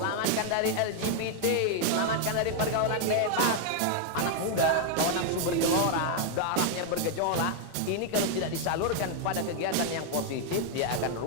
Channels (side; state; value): both; different; correlation 0.00